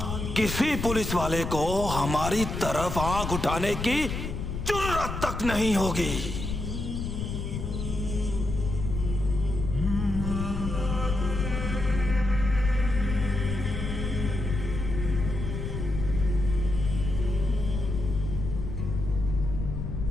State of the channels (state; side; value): noise; left; rumble, 4 dB below the sound